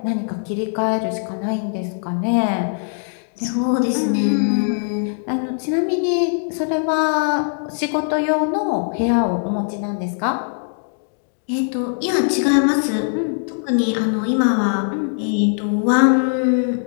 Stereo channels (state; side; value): silent; right; digital silence